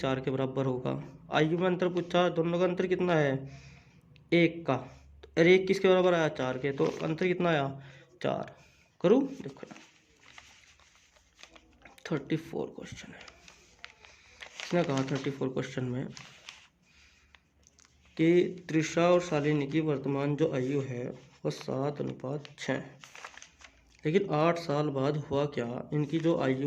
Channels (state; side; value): identical; both; correlation 1.00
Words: 4 के बराबर होगा। आयु में अंतर पूछा, दोनों का अंतर कितना है, 1 का। और 1 किसके बराबर आया, 4 के, तो अंतर कितना आया, 4। करूँ, देखो 34 क्वेश्चन है, इसने कहा 34 क्वेश्चन में कि त्रिशा और शालिनी की वर्तमान जो आयु है वह 7:6, लेकिन 8 साल बाद हुआ क्या, इनकी जो